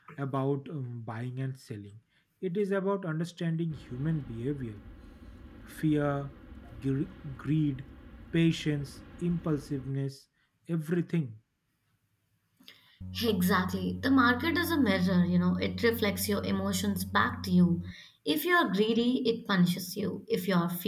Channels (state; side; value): identical; both; correlation 1.00